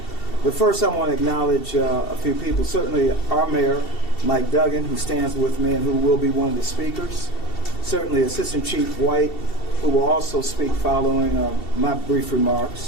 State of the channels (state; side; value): late; right; 2.7 ms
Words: But first I want to acknowledge a few people. Certainly our mayor, Mike Duggan, who stands with me and who will be one of the speakers. Certainly Assistant Chief White, who will also speak following my brief